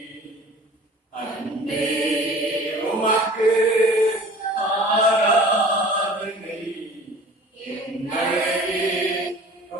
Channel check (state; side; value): normal; both; correlation 0.45